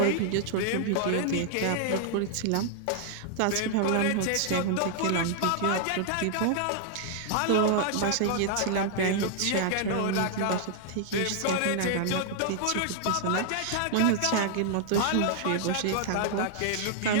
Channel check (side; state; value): both; different; correlation -0.01